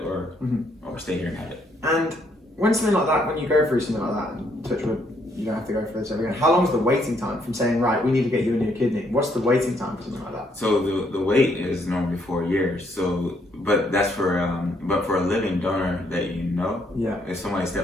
or stay here and have it. And when something like that, when you go through something like that, and touch wood, you don't have to go for this ever again. How long is the waiting time from saying, right, we need to get you a new kidney? What's the waiting time for something like that? So the wait is normally 4 years. So, but that's for a living donor that you know. Yeah. If somebody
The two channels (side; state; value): both; normal; correlation 0.71